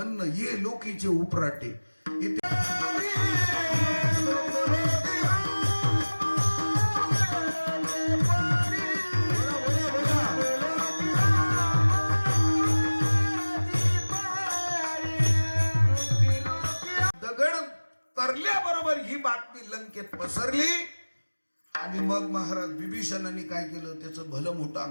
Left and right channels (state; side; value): inverted; both; correlation -1.00